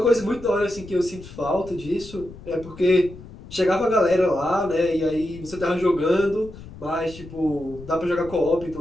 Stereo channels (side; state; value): left; noise; rumble, 16 dB below the sound